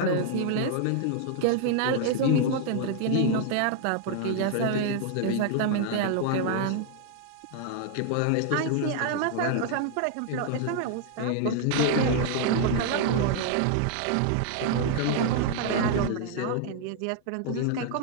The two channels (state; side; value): different; both; correlation 0.00